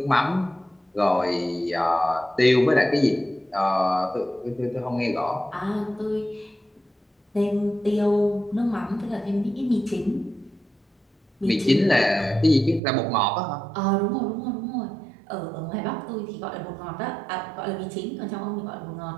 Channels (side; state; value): left; drops out; at 12.8 s